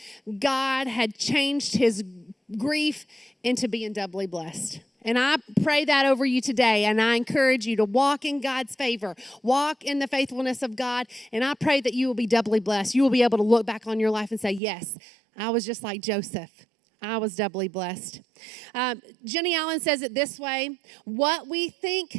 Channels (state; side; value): drops out; left; at 14.6 s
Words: God had changed his grief into being doubly blessed. And I pray that over you today, and I encourage you to walk in God's favor, walk in the faithfulness of God, and I pray that you will be doubly blessed. You will be able to look back on your life and say, yes, I was just like Joseph. I was doubly blessed. Jenny Allen says it this way, what we